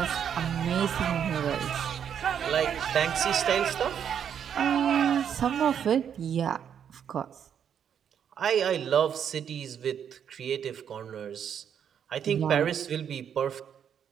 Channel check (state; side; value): quieter; left; 8.4 dB